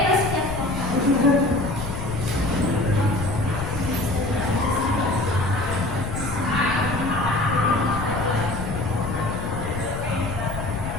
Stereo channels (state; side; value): noise; left; rumble, 6 dB below the sound